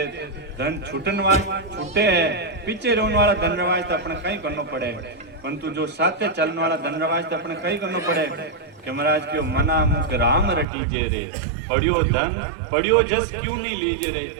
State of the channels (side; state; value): left; drops out; at 10.7 s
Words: धन छूटन वाला छूटे है पीछे रोने वाला धन रवाज तो अपने कहीं करना पड़े परंतु जो साथे चलने वाला धन रवाज तो अपने कहीं करना पड़े कि महाराज क्यों मना मुख राम रटीजे रे पढ़ियो धन पढ़ियो जस क्यों नहीं लीजे रे